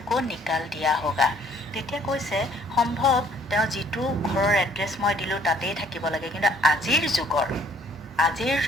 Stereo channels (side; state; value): both; normal; correlation 0.60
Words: को निकाल दिया होगा। তেতিয়া কৈছে সম্ভৱ তেওঁ যিটো ঘৰৰ এড্ৰেছ মই দিলোঁ তাতেই থাকিব লাগে, কিন্তু আজিৰ